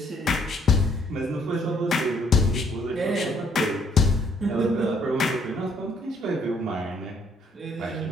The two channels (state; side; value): normal; both; correlation 0.66